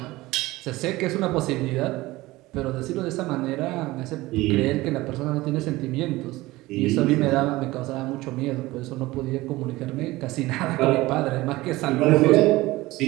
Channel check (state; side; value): quieter; left; 19.2 dB